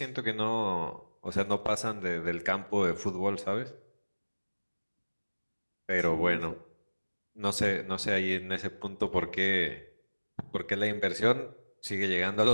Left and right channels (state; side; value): inverted; both; correlation -1.00